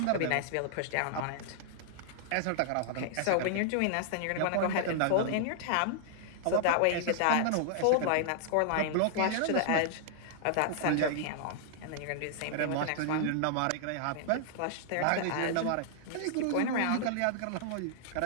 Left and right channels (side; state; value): both; different; correlation -0.01